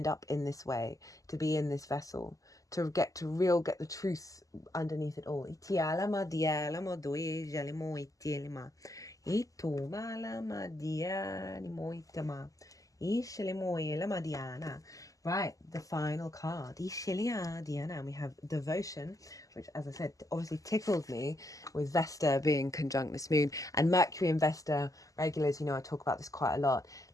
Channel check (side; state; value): right; late; 0.17 ms